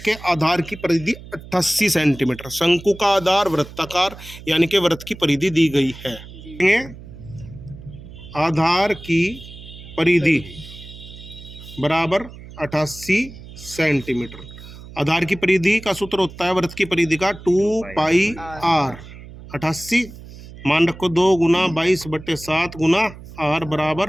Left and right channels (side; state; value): right; noise; hum, 16 dB below the sound